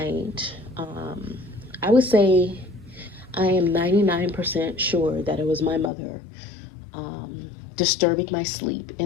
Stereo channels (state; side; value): drops out; right; at 5.9 s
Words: I would say I am 99% sure that it was my mother disturbing my sleep,